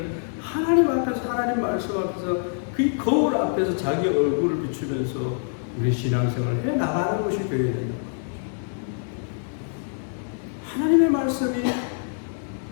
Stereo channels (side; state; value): right; silent; digital silence